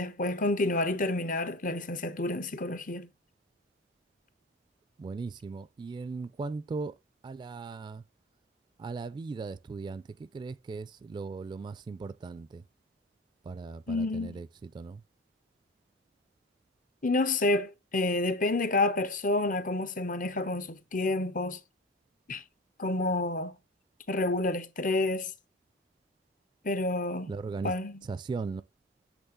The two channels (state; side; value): normal; both; correlation 0.31